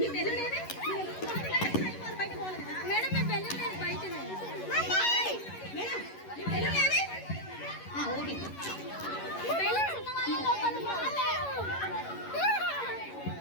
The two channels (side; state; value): right; late; 11 ms